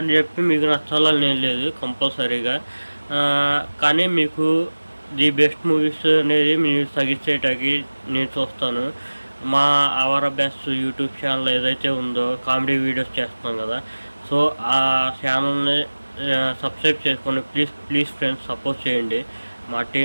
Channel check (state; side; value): inverted; both; correlation -1.00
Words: చెప్పి మీకు నచ్చాలని నేను లేదు కంపల్సరీగా. కానీ మీకు ది బెస్ట్ మూవీస్ అనేది మీరు సజెస్ట్ చేయడానికి నేను చూస్తాను. మా అవర్ బెస్ట్ యూట్యూబ్ ఛానల్ ఏదైతే ఉందో కామెడీ వీడియోస్ చేస్తున్నాం కదా, సో ఆ ఛానల్ని సబ్స్క్రైబ్ చేసుకొని ప్లీజ్ ఫ్రెండ్స్ సపోర్ట్ చేయండి. మా